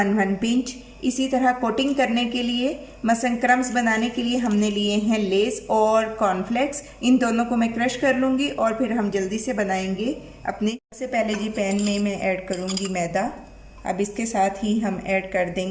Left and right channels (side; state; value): both; identical; correlation 1.00